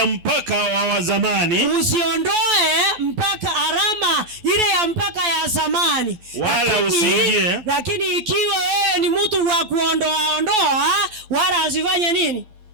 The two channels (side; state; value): left; late; 12 ms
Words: mpaka wa zamani, usiondoe mpaka alama ile ya mpaka ya zamani, wala usiingie. Lakini ikiwa wewe ni mtu wa kuondoa wala usifanye nini?